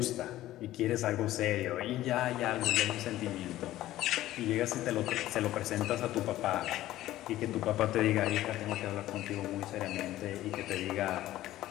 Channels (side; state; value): right; quieter; 14.8 dB